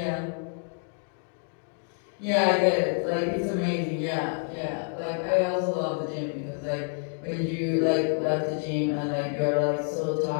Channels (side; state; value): right; silent; 57 dB below the other